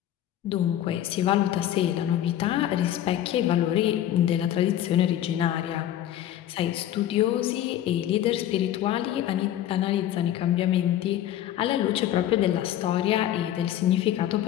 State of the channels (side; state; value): right; quieter; 12.0 dB